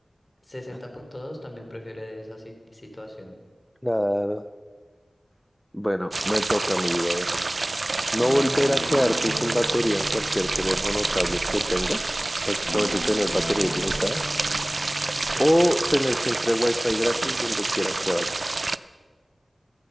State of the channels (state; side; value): normal; both; correlation 0.98